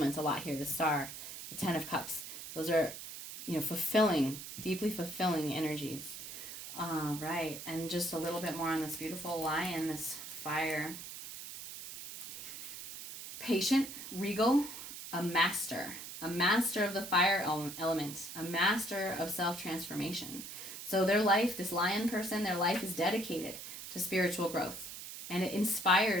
a lot here. The Star, the Ten of Cups, those are, fulfilling, deeply fulfilling energies. Right, and just a little bit more on this beautiful lion, this fire. Patient, regal, a master of the fire element, a master of self-transformation. So their life, this lion person, their life is dedicated to spiritual growth, and it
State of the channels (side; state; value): right; noise; hiss, 10 dB below the sound